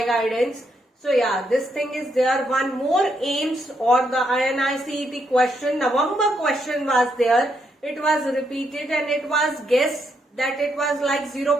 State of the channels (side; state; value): both; normal; correlation 0.77